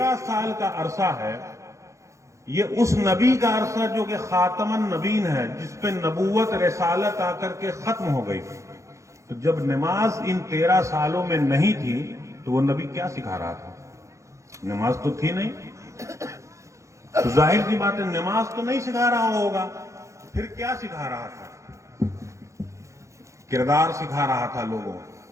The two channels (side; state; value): left; late; 0.15 ms